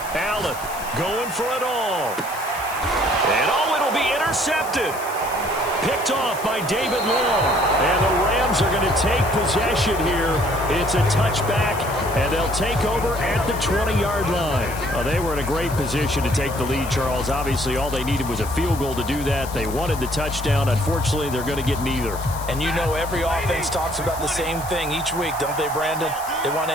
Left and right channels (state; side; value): noise; left; hiss, 13 dB below the sound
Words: Allen going for it all. And it'll be intercepted. Picked off by David Long. And the Rams are going to take possession here. It's a touchback, and they'll take over at the 20-yard line. Well, they were in a great position to take the lead, Charles. Obviously, all they needed was a field goal to do that. They wanted the touchdown. Unfortunately, they're going to get neither. And you know every offense talks about the same thing each week, don't they, Brandon? They want to